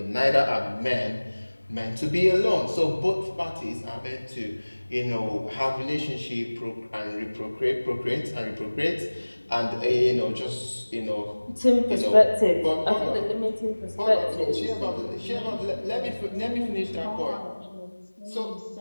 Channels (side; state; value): both; inverted; correlation -1.00